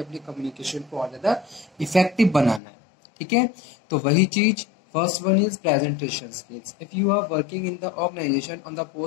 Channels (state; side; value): drops out; right; at 2.6 s